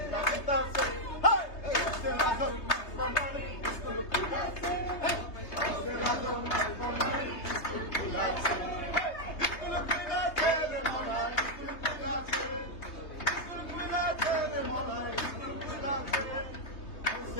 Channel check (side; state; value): right; late; 3.3 ms